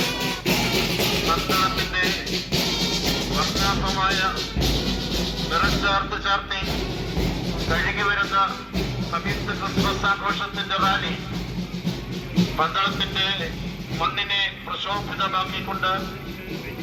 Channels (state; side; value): identical; both; correlation 1.00